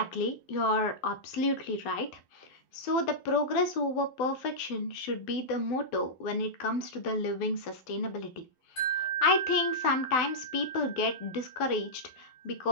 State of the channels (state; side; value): late; right; 12 ms